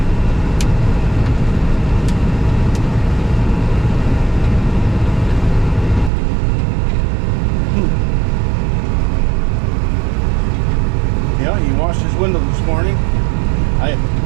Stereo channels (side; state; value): left; drops out; at 6.1 s